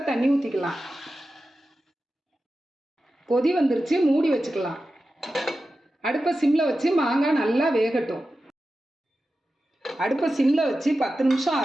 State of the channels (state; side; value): normal; both; correlation 0.93